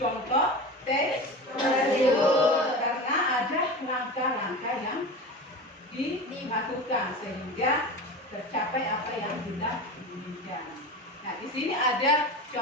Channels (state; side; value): normal; both; correlation 0.29